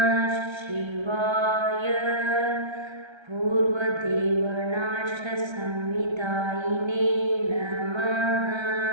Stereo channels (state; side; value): late; left; 1.3 ms